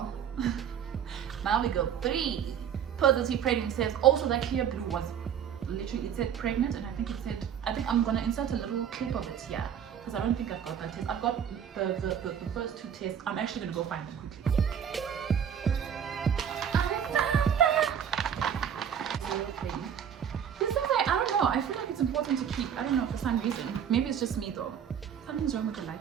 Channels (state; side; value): quieter; left; 8.5 dB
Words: now we go 3 positive pregnancies. Also that clear blue was literally, it said pregnant, and I think I'm gonna insert a little clip of it here. Because I don't think I've got that test. I've got the first 2 tests. I'm actually gonna go find them quickly. This is like, I don't know. I feel like it's important to keep. I don't know, for some reason. Maybe it's just me though. Something's wrong with the